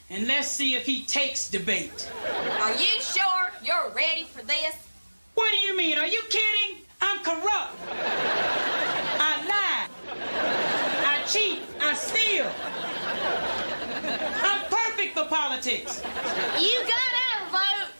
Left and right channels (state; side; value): inverted; both; correlation -1.00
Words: and let's see if he takes debate. Are you sure you're ready for this? What do you mean? Are you kidding? I'm corrupt. I lie. I cheat. I steal. I'm perfect for politics. You gotta vote.